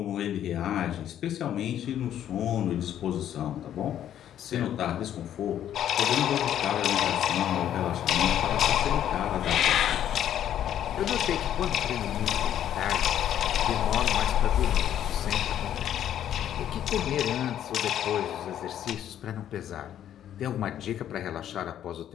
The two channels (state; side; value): quieter; right; 10.7 dB